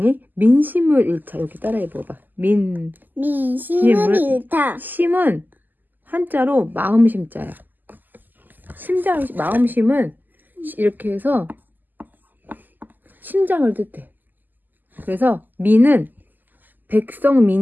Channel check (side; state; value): left; late; 0.087 ms